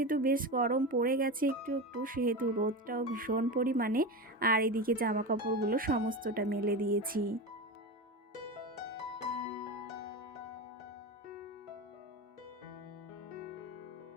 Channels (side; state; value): both; normal; correlation 0.22